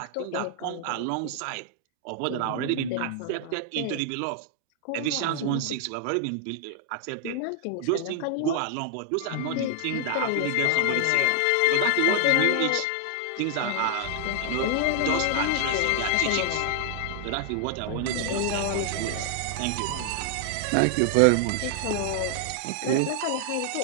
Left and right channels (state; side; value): different; both; correlation 0.00